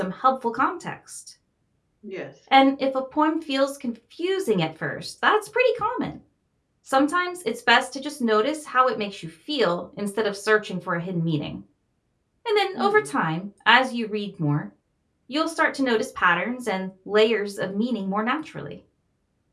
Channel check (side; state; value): both; identical; correlation 1.00